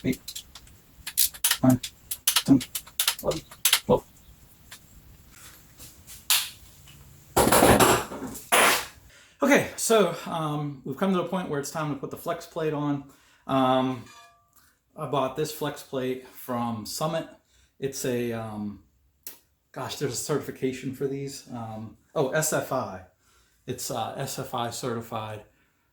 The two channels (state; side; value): identical; both; correlation 1.00